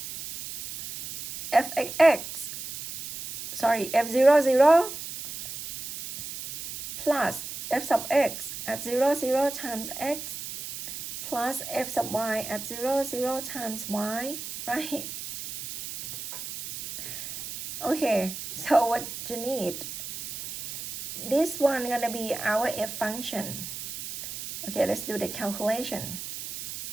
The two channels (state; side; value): noise; right; hiss, 9 dB below the sound